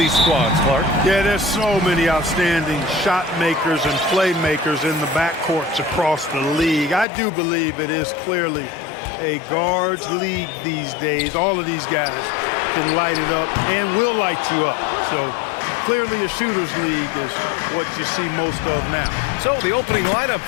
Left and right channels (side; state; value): right; drops out; at 7.1 s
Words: squads, Clark. Yeah, there's so many outstanding shot makers and playmakers in the backcourts across the league. I do believe it is clearly a guards league these days. All of these guys can light it up and will light you up. So clearly a shooters league is what you see most of now. So the opening lineup